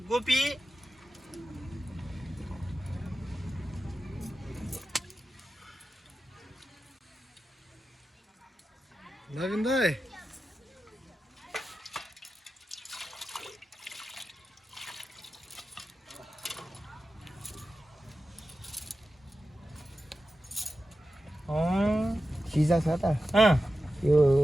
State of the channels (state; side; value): normal; both; correlation 0.92